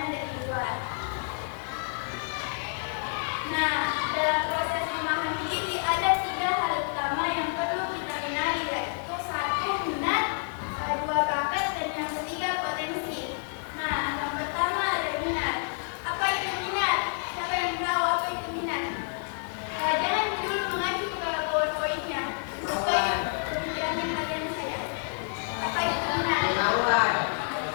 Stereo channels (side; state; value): right; silent; 59 dB below the other